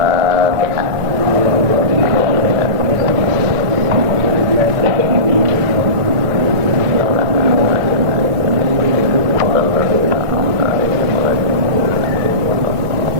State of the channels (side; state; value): left; late; 1.5 ms